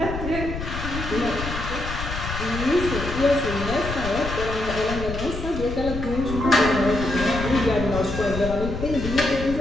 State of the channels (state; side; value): noise; left; rumble, 6 dB below the sound